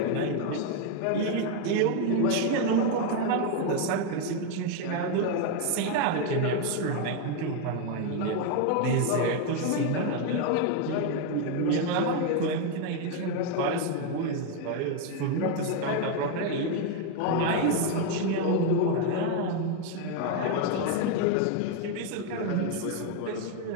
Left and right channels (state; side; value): different; both; correlation 0.01